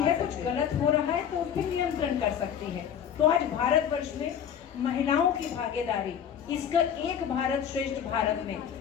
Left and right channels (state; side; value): quieter; right; 8.7 dB